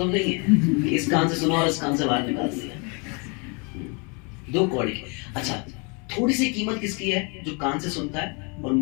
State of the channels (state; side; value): quieter; right; 32.9 dB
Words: नहीं है कि इस कान से सुनो और इस कान से बाहर निकाल दिया। 2 कौड़ी की। अच्छा थोड़ी सी कीमत किसकी है? जो कान से सुनता है और